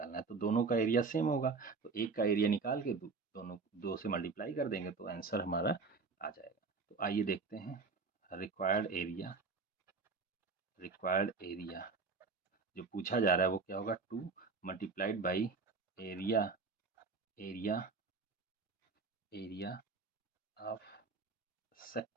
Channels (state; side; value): quieter; left; 4.5 dB